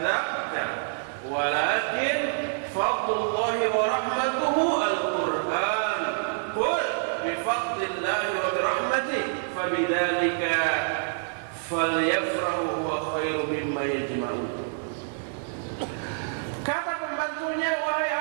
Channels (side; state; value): left; silent; digital silence